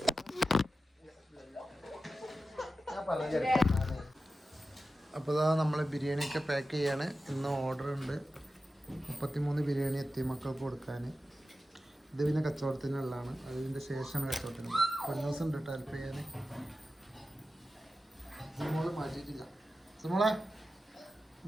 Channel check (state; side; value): normal; both; correlation 0.92